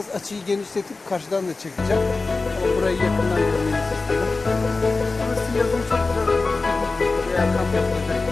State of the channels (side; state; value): right; quieter; 3.7 dB